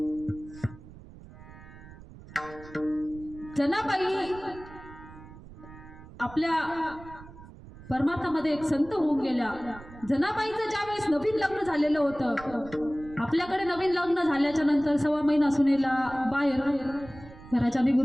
जनाबाई आपल्या परमार्थामध्ये एक संत होऊन गेल्या. जनाबाईचं ज्यावेळेस नवीन लग्न झालेलं होतं, आपल्याकडे नवीन लग्न झाल्याच्या नंतर 6 महिना सुनेला बाहेर घराच्या निघू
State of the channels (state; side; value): noise; right; rumble, 18 dB below the sound